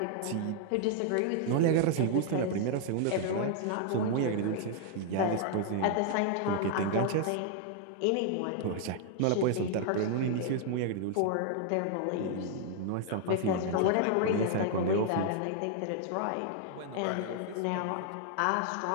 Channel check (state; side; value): different; both; correlation 0.00